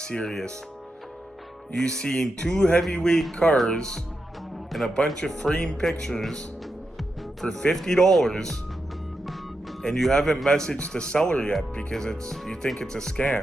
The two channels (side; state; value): both; normal; correlation 0.87